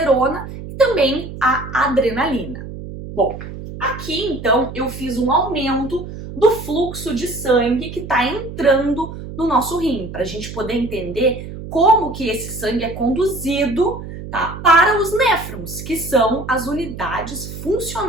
e também a adrenalina. Bom, aqui então eu fiz um aumento do fluxo de sangue que está entrando no nosso rim, para a gente poder entender como que esse sangue é conduzido, tá, para os néfrons, que são as unidades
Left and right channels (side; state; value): right; noise; hum, 11 dB below the sound